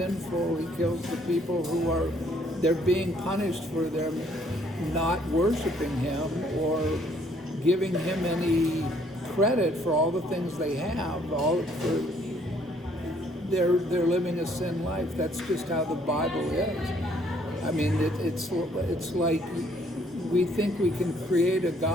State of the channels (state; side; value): normal; both; correlation 0.65